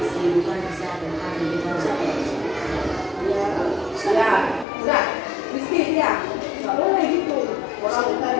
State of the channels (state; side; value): drops out; right; at 4.7 s